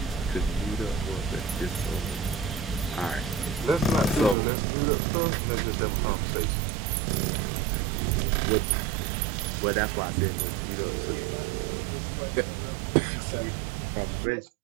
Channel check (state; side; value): drops out; left; at 4.4 s